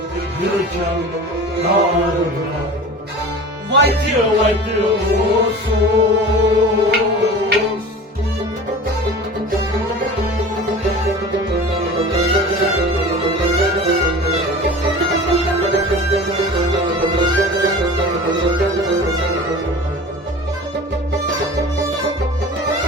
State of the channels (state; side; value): normal; both; correlation 0.38